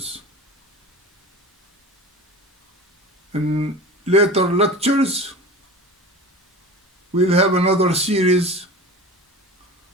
In later lectures, we'll have another series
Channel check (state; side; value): normal; both; correlation 0.34